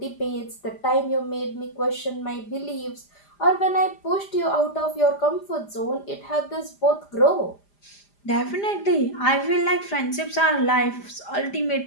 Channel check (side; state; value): right; late; 5.0 ms